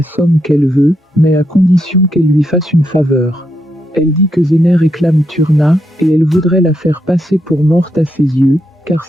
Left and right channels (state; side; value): normal; both; correlation 0.81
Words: somme qu'elle veut, mais à condition qu'elle lui fasse une faveur. Elle dit que Zeynep réclame Turna, et elle voudrait la faire passer pour morte à ses yeux, car